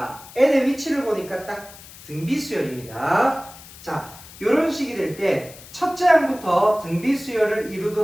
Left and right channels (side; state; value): left; noise; hiss, 18 dB below the sound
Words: n의 위치를 보니까 딱 등비수열입니다. 자, 요런 식이 될 때 첫째 항부터 등비수열을